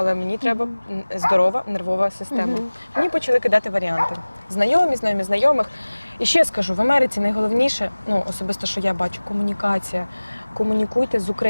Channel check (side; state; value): both; inverted; correlation -1.00